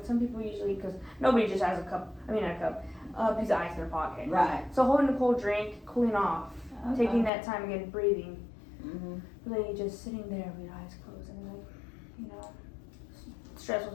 some people usually, because nobody just has a piece of ice in their pocket. Right. So holding a cold drink, cooling off, taking that time again, breathing, really just sitting there with your eyes closed and like, you know, stressful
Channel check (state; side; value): drops out; right; at 7.3 s